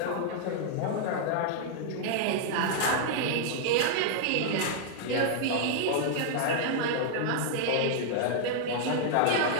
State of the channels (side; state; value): both; different; correlation -0.01